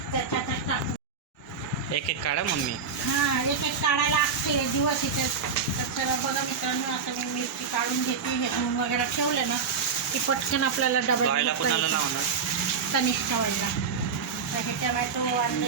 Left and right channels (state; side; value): quieter; left; 5.7 dB